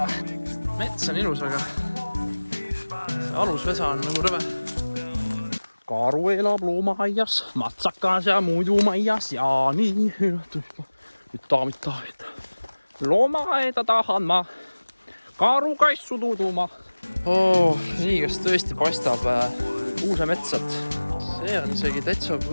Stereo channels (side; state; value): both; inverted; correlation -1.00